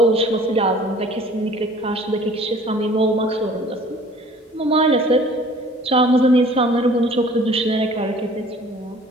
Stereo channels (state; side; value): normal; both; correlation 0.50